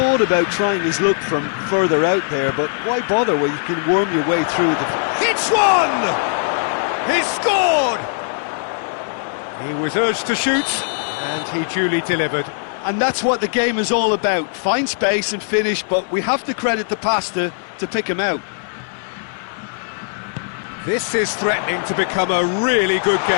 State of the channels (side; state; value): right; silent; 66 dB below the other